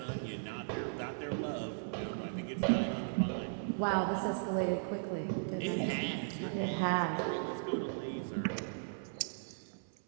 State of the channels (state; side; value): silent; left; 53 dB below the other